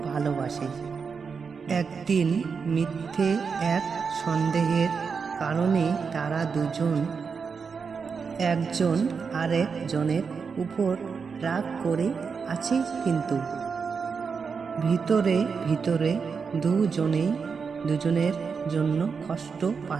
ভালোবাসে। একদিন মিথ্যে এক সন্দেহের কারণে তারা দুজন একজন আরেকজনের উপর রাগ করে আছে, কিন্তু ভিতরে ভিতরে দুজনেই দুজনের জন্য কষ্ট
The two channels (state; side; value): quieter; left; 5.6 dB